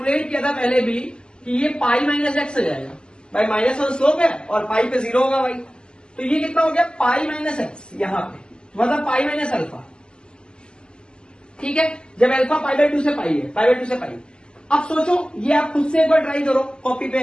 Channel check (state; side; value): late; right; 0.049 ms